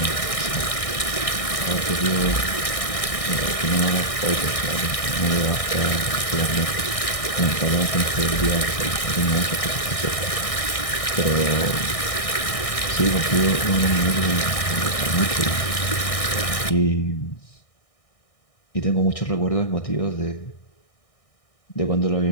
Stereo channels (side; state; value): right; late; 1.6 ms